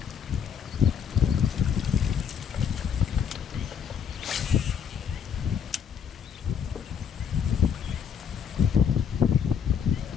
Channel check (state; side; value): quieter; right; 7.5 dB